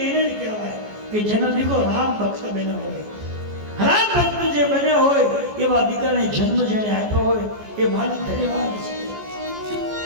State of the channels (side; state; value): left; late; 14 ms